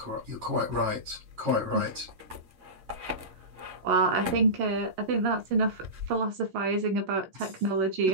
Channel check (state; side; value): late; left; 11 ms